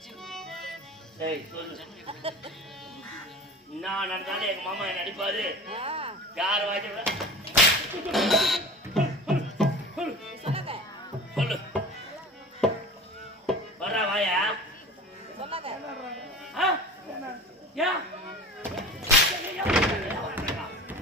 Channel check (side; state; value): both; normal; correlation 0.36